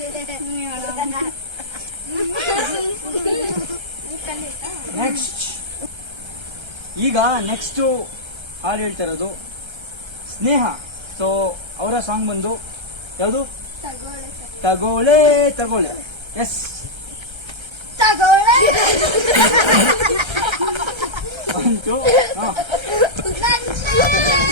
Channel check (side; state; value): left; late; 1.3 ms